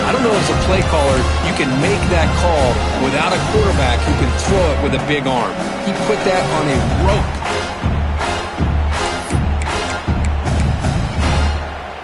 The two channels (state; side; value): identical; both; correlation 1.00